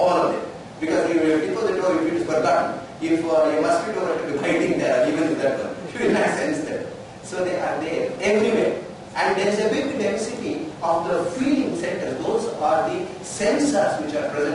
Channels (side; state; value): both; identical; correlation 1.00